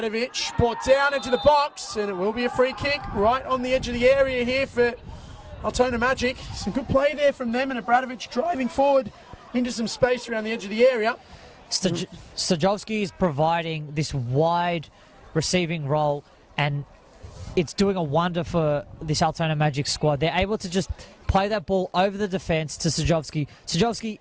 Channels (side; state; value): both; identical; correlation 1.00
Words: Brought down into the box. And it will be a free kick right on the edge of the area here for Altona Magic. Some good play there from them, and Bradovic driving forward into some space around the edge of the area. Stajovski is providing this wide receiving role, and it's doing a wonder for this Altona Magic squad. They're able to just play that ball over the defence to Stajovski. Stajovski